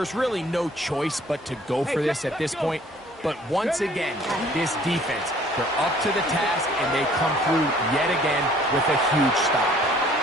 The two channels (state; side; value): normal; both; correlation 0.56